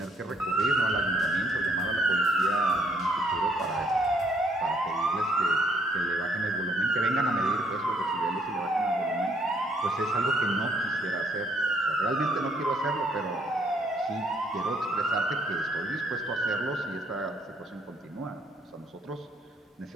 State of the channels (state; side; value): normal; both; correlation 0.67